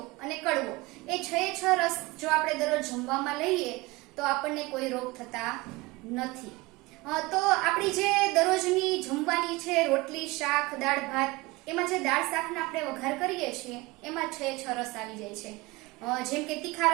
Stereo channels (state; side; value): quieter; left; 22.5 dB